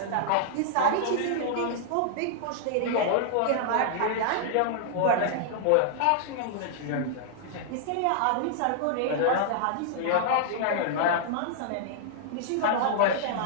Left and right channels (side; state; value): both; different; correlation -0.01